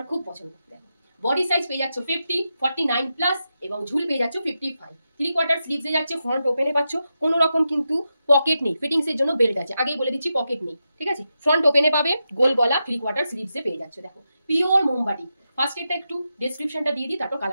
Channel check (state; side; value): inverted; both; correlation -0.88